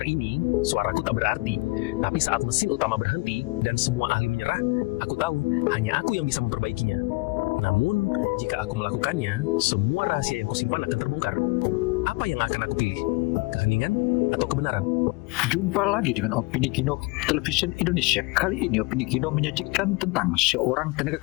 ini, suaraku tak berarti. Tapi saat mesin utama berhenti dan semua ahli menyerah, aku tahu hanya aku yang bisa memperbaikinya. Namun, jika aku melakukannya, semua rahasia yang kusimpan akan terbongkar. Apa yang akan aku pilih? Keheningan atau kebenaran? Jumpa lagi dengan Opini Kino Television Indonesia. Kali ini Opini Kino menyajikan tentang seorang tenaga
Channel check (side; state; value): right; quieter; 24.9 dB